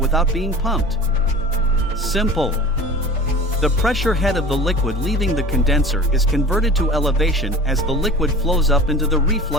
being pumped? Simple. The pressure head of the liquid leaving the condenser is converted to elevation as the liquid flows up into the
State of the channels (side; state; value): both; normal; correlation 0.39